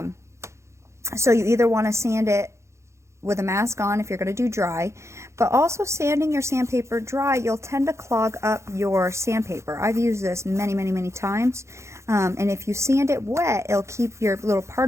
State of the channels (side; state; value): left; late; 0.14 ms